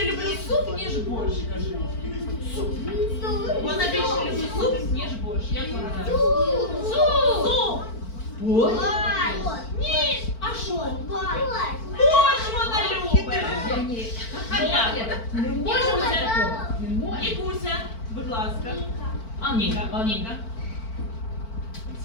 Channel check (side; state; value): right; late; 4.5 ms